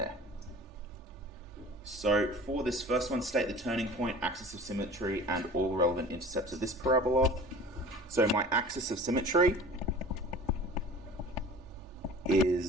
So for this first one, state the turning point, axis of symmetry, and all relevant intercepts of this parabola. So my axis of symmetry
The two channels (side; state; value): both; normal; correlation 0.41